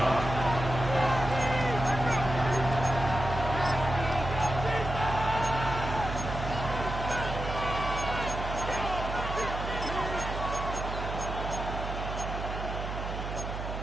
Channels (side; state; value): right; noise; hum, 5 dB below the sound